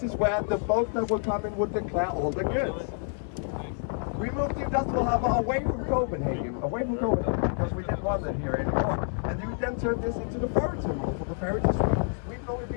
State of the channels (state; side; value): silent; right; 59 dB below the other